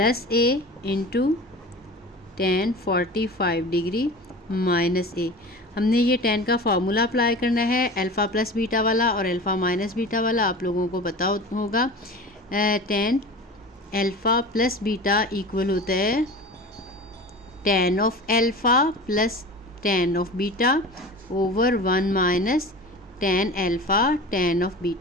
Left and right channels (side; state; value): both; normal; correlation 0.35